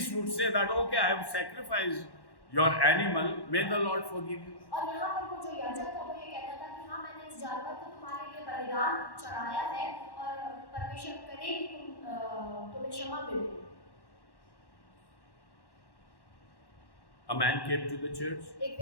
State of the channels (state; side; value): late; right; 1.1 ms